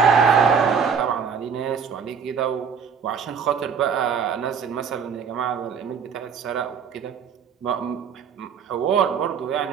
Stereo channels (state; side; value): quieter; left; 6.6 dB